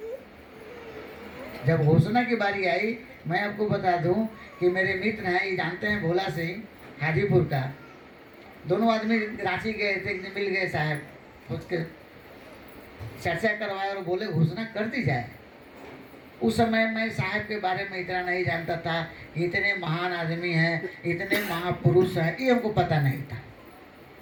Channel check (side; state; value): both; identical; correlation 1.00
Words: जब घोषणा की बारी आई, मैं आपको बता दूं कि मेरे मित्र हैं, ये जानते हैं, भोला सिंह हाजीपुर का, दोनों आदमी रांची गए थे, एक दिन मिल गए साहब, उसके चर्चा करवाए और बोले घोषणा कर दी जाए। उस समय मैं साहब के बारे में इतना नहीं जानता था, इतने महान आदमी हैं, इतने महापुरुष हैं, ये हमको पता नहीं था।